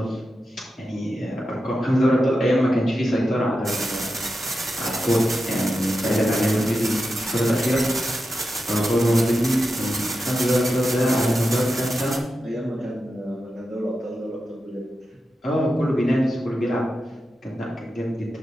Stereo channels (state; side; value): normal; both; correlation 0.90